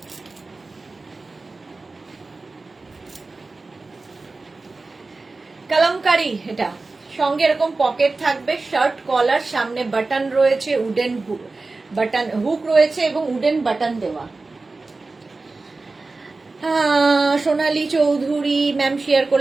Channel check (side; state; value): left; quieter; 3.6 dB